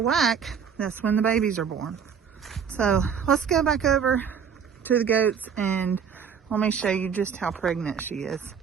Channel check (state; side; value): quieter; left; 7.1 dB